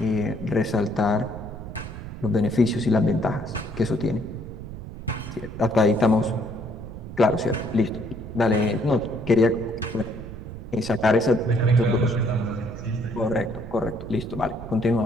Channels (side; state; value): right; noise; rumble, 11 dB below the sound